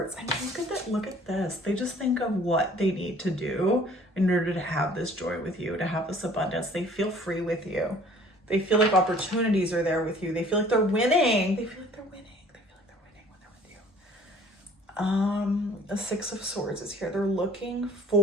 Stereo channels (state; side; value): normal; both; correlation 0.53